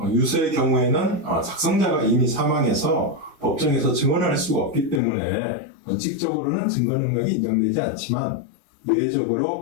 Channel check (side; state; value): right; drops out; at 5.0 s